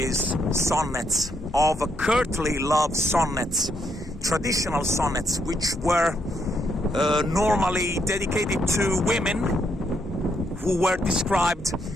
sonnets, of courtly love sonnets, traditional sonnets, which were normally dedicated to women who were described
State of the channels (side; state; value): both; normal; correlation 0.76